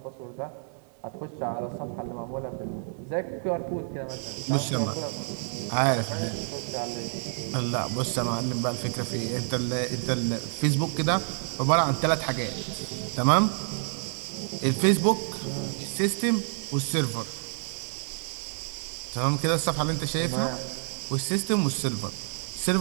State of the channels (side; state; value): left; silent; 59 dB below the other